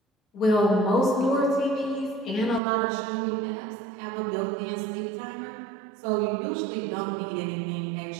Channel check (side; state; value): left; drops out; at 2.6 s